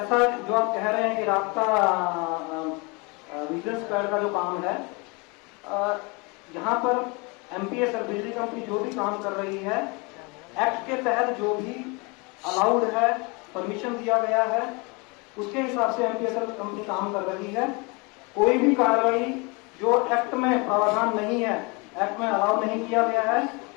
जो आप कह रहे हैं कि रास्ता विजिलेंस स्क्वाड का जो काम है, यहाँ पर एमपीएस और बिजली कंपनी जो भी काम कर रही है, एक्ट के तहत जो भी अलाउड है, परमिशन दिया गया है, उसके हिसाब से एमपीएसएल कंपनी काम कर रही है। कोई भी कार्रवाई जो एक्ट में प्रावधान नहीं है, एक्ट में अलाउ नहीं किया गया है,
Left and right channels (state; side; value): quieter; right; 28.9 dB